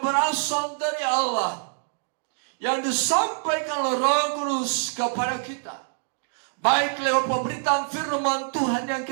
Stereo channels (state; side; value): silent; left; digital silence